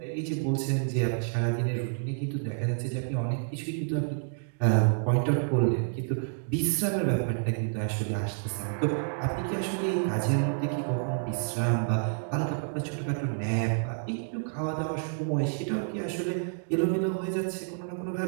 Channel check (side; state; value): left; silent; digital silence